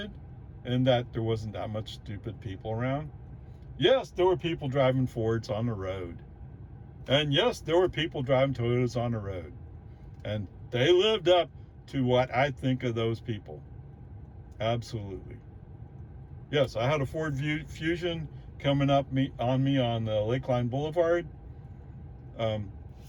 in that there wasn't that much stupid people around. Yes, there were people driving Fords on the road. And yes, there were people driving Toyotas on the road. And they lived up to what I think of those people. Absolutely. Yes, I had a Ford Fusion coming up on me on the Lakeline Boulevard.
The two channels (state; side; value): identical; both; correlation 1.00